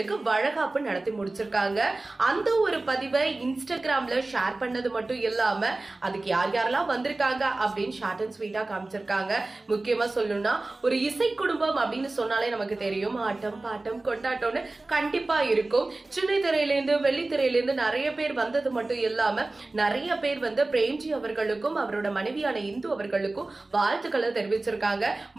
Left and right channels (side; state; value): left; quieter; 3.1 dB